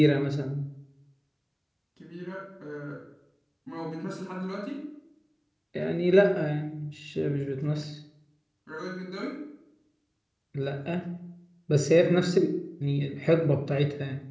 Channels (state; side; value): identical; both; correlation 1.00